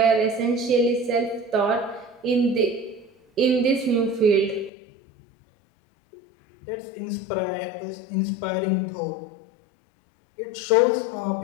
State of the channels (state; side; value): drops out; right; at 4.7 s